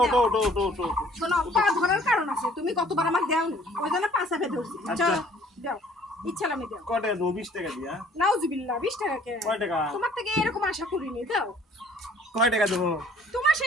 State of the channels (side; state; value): both; normal; correlation 0.56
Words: ওটো দেও। ওটো ওটো ওটো ওটো। শোনো, পা ধরার কারণ আছে। তুমি কতবার আমাকে দেওনি, ওই জন্য পাঁচা ফেলে ধরছি। আচ্ছা। চলো দেও, ইচ্ছা আমি দেও। কয় টাকা দেবো? 20 টাকা দিয়া। নাউজুবিল্লাহ, 20 টাকা কে? কয় টাকা? তোমার থেকে এরকম আশা করিনি। দাও, কয় টাকা দেবো? তোমার